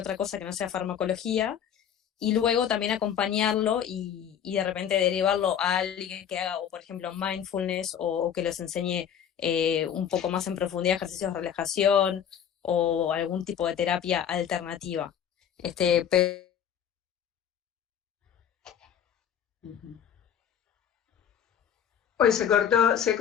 cosa que no sea farmacología, y luego también acompañarlo y de repente derivarlo a alguien que haga, o por ejemplo, mindfulness o que les enseñe un poco más en profundidad ejercicios de relajación o algún tipo de terapia alternativa. Pero Hoy se cortó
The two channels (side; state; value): right; quieter; 8.9 dB